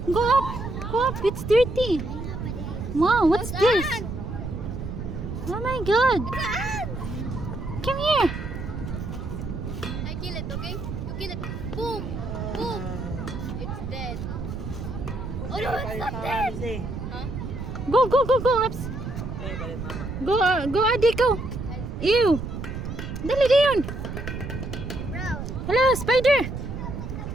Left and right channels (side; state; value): right; noise; rumble, 6 dB below the sound